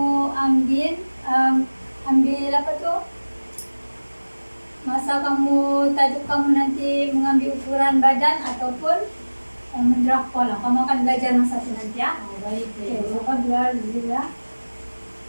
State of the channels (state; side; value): inverted; both; correlation -1.00